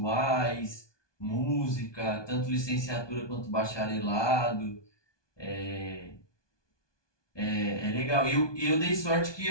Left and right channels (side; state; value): right; late; 1.2 ms